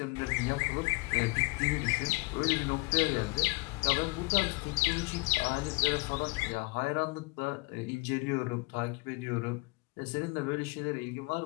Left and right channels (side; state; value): right; quieter; 26.2 dB